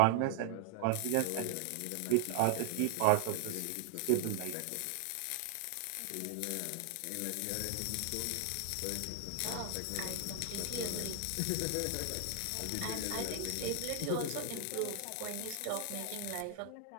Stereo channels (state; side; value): different; both; correlation 0.00